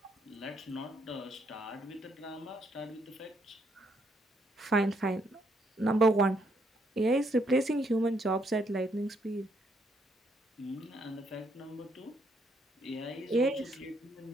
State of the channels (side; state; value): both; normal; correlation 0.72